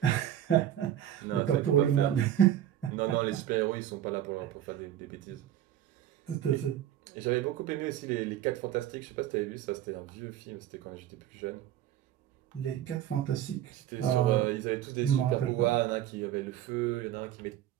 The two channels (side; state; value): left; quieter; 11.5 dB